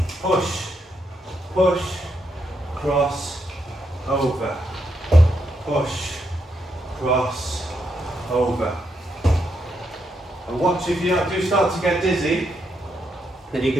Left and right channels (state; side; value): normal; both; correlation 0.80